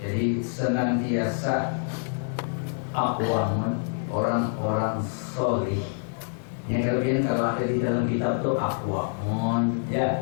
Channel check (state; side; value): silent; right; digital silence